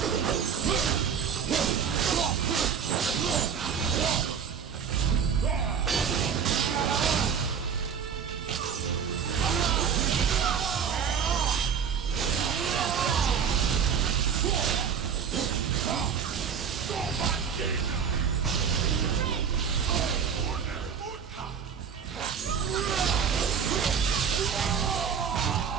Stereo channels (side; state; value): left; quieter; 7.2 dB